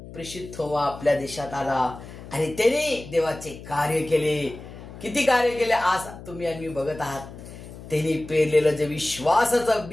प्रेषित थोमा आपल्या देशात आला आणि त्याने देवाचे कार्य केले. किती कार्य केले आज तुम्ही आणि मी बघत आहात. त्यांनी पेरलेलं जे विश्वासाचं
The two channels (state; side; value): noise; left; hum, 15 dB below the sound